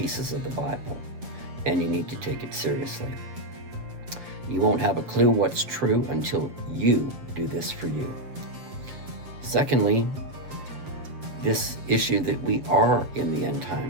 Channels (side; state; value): left; late; 7.6 ms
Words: of the Bible, and you need to take it seriously. You won't have a clue what's true until you do this for you. Secondly, this issue that we are in the end